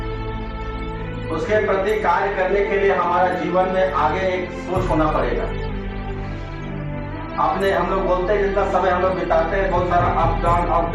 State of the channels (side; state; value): both; identical; correlation 1.00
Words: उसके प्रति कार्य करने के लिए हमारा जीवन में आगे एक सोच होना पड़ेगा। अपने हम लोग बोलते हैं जितना समय हम लोग बिताते हैं, बहुत सारा अप